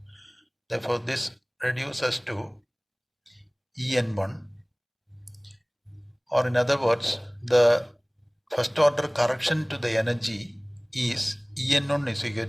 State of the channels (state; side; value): identical; both; correlation 1.00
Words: Therefore this reduces to en1, or in other words the first order correction to the energy is En1 is equal